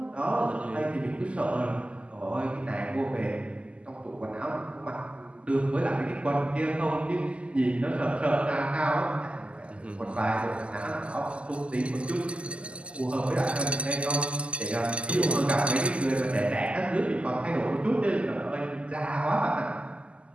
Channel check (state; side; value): late; left; 0.056 ms